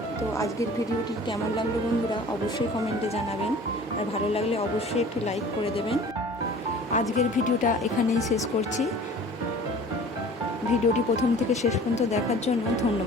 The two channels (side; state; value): both; normal; correlation 0.45